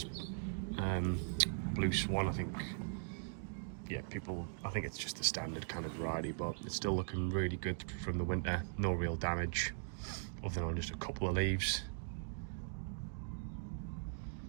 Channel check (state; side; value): silent; left; digital silence